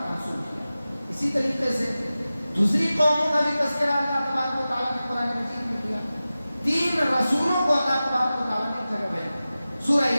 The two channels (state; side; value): inverted; both; correlation -0.95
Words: منسوب کیا۔ اسی طریقے سے دوسری قوموں کا بھی تذکرہ اللہ تبارک و تعالیٰ نے قرآن مجید میں کیا۔ 3 رسولوں کو اللہ تبارک و تعالیٰ نے ایک جگہ بھیجا۔ سورہ